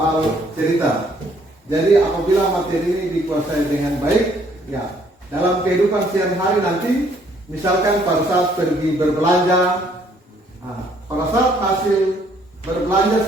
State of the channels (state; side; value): normal; both; correlation 0.64